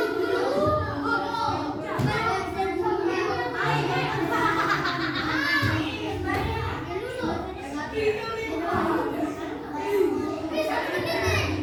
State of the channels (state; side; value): identical; both; correlation 1.00